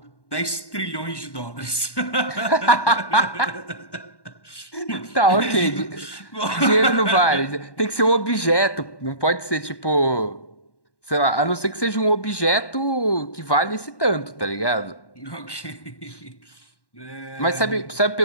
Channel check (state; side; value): late; right; 1.1 ms